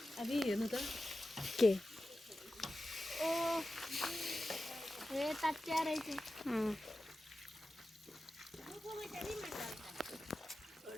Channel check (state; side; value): normal; both; correlation 0.94